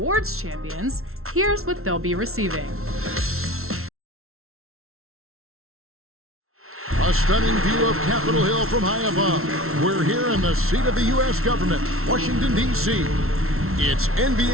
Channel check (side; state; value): left; late; 0.62 ms